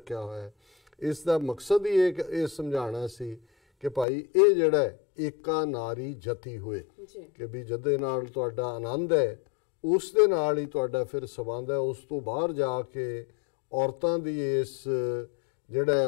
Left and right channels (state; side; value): drops out; right; at 4.0 s